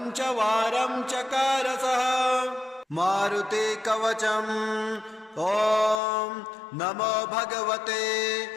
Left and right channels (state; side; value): drops out; right; at 6.0 s